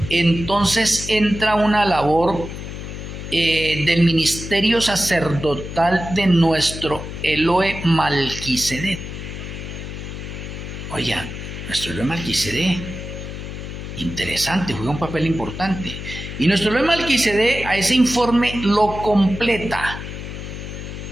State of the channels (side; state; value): left; noise; hum, 9 dB below the sound